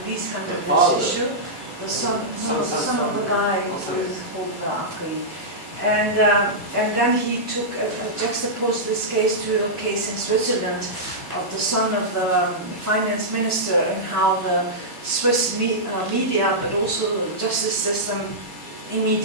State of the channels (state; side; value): normal; both; correlation -0.11